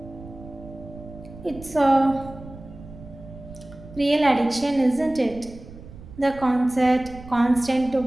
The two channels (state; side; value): noise; right; rumble, 17 dB below the sound